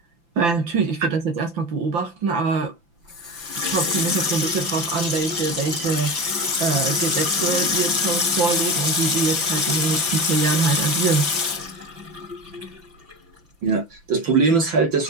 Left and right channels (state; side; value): late; left; 5.9 ms